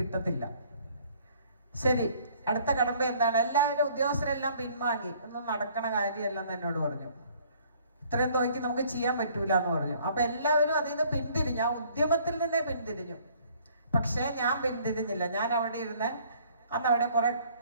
ശരി, അടുത്ത കടമ്പ എന്താണ്? എല്ലാവരും ഉദ്യോഗസ്ഥരെല്ലാം പിൻവാങ്ങി. ഒന്നും നടക്കണ കാര്യമല്ലെന്ന് എന്നോട് പറഞ്ഞു. ഇത്രയും തുകയ്ക്ക് നമുക്ക് ചെയ്യാൻ പറ്റൂല എന്ന് പറഞ്ഞു. അപ്പൊ എല്ലാവരും അതിൽ നിന്ന് പിന്തിരിഞ്ഞു, ആ ഉദ്യമത്തിൽ നിന്നേ പിന്തിരിഞ്ഞു. പക്ഷേ ഞാൻ പിന്തിരിഞ്ഞില്ല. ഞാൻ അവിടെ ഇരുന്ന് അന്ന് അവിടെ കുറെ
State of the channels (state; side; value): inverted; both; correlation -0.59